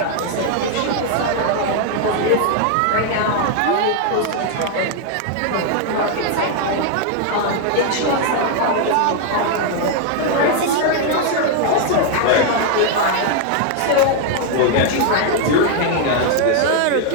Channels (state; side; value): different; both; correlation 0.00